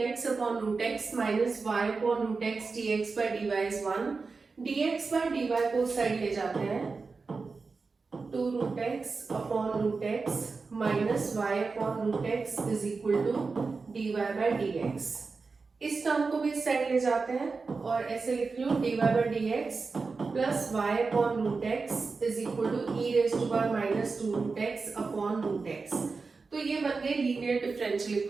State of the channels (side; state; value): left; quieter; 4.4 dB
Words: upon root x minus y upon root x dx by dy is 1. dx by dy को side ले जाते हैं, 2 root x upon root x minus y upon root x is equal to dy by dx. इस term को भी इस side ले जाते हैं और ऐसे लिख लो dy by dx plus y upon root x is equal to e raise to power minus 2 root x upon root x. तो ये बन गए लीनियर डिफरेंशियल